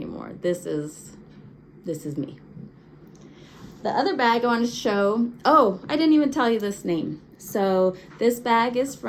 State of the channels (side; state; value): both; identical; correlation 1.00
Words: This is me. The other bag I wanted to show, oh, I didn't even tell you this name. So this bag is